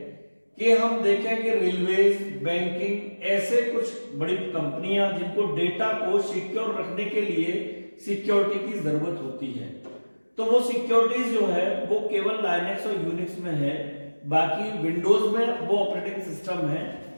कि हम देखें कि रेलवेज, बैंकिंग, ऐसे कुछ बड़ी कंपनियां जिनको डेटा को सिक्योर रखने के लिए सिक्योरिटी की जरूरत होती है, तो वो सिक्योरिटीज जो है वो केवल लाइनक्स और यूनिक्स में है। बाकी विंडोज में वो ऑपरेटिंग सिस्टम है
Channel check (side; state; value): both; inverted; correlation -1.00